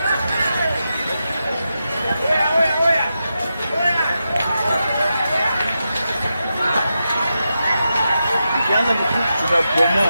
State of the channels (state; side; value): inverted; both; correlation -0.88